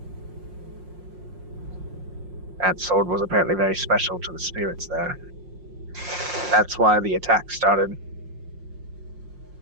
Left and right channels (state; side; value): late; left; 5.6 ms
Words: That sword was apparently very special to the spirits there. That's why the attack started.